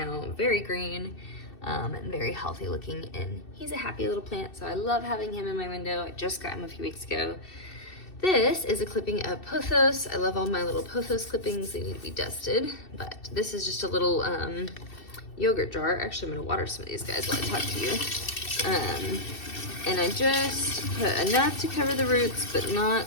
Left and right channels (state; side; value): late; right; 2.7 ms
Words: very green. And very healthy looking, and he's a happy little plant, so I love having him in my window. I just got him a few weeks ago. This is a clipping of pothos. I love all my little pothos clippings. They need to be dusted, but this is just a little yogurt jar. Actually, I'm gonna water some of these guys while I talk to you. And I just put enough to cover the roots, but